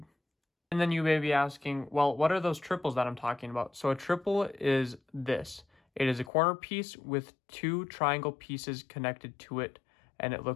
And then you may be asking, well, what are those triples that I'm talking about? So a triple is this. It is a corner piece with 2 triangle pieces connected to it, and it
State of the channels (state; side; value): drops out; right; at 6.3 s